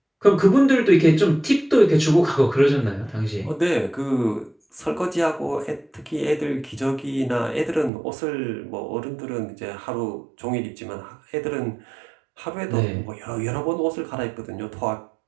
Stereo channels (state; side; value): drops out; left; at 7.9 s